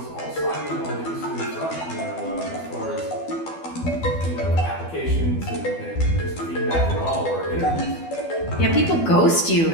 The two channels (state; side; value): late; right; 12 ms